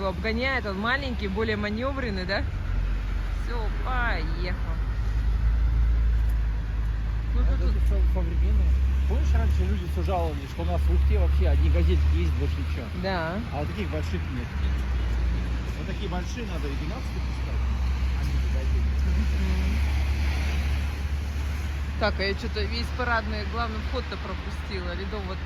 обгоняет, он маленький, более маневренный, да? Все, поехал. Ну, Это тут все современное. Помнишь, раньше люди все жаловались, что у нас в Ухте вообще одни газельки есть, больше ничего. да. А вот таких больших нет. Вот такие большие надо и 12 пускать, а не газельки. Так, а я что-то весь парадный главный вход-то пропустила, Ледового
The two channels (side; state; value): both; identical; correlation 1.00